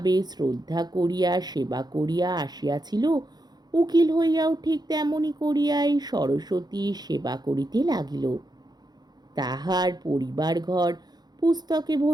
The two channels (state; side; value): late; left; 0.20 ms